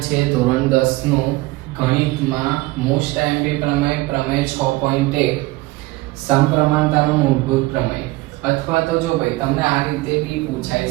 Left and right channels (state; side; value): quieter; left; 20.7 dB